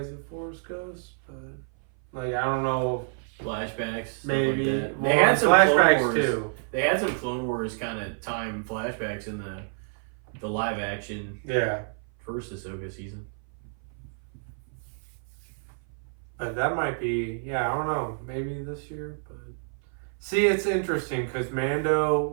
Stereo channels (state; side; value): silent; left; 57 dB below the other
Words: the Force Ghost, but like I don't know. Flashbacks. Maybe like they had some flashbacks too. They had some Clone Wars kind of time flashbacks in the live action. Yeah. First Ahsoka season. But that might be, I don't know, maybe this year. But see, it's interesting because